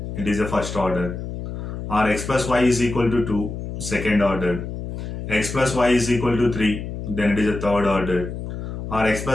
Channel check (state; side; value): noise; left; hum, 7 dB below the sound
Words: it is a first order. Or X plus Y is equal to 2, second order. X plus Y is equal to 3, then it is a third order. Or X